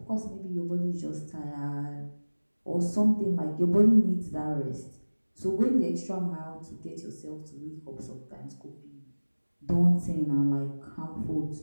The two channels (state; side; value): inverted; both; correlation -1.00